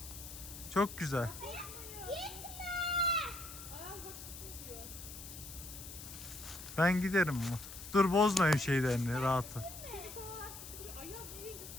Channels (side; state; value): left; noise; hiss, 12 dB below the sound